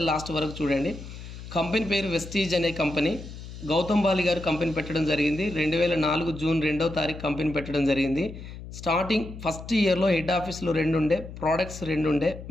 లాస్ట్ వరకు చూడండి. కంపెనీ పేరు వెస్టీజ్ అనే కంపెనీ. గౌతమ్ బాలి గారు కంపెనీ పెట్టడం జరిగింది. 2004 జూన్ 2వ తారీఖు కంపెనీ పెట్టడం జరిగింది. స్టార్టింగ్ ఫస్ట్ ఇయర్లో హెడ్ ఆఫీస్లో 2 ఉండే, ప్రోడక్ట్స్ 2 ఉండే,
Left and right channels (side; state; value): left; noise; hum, 12 dB below the sound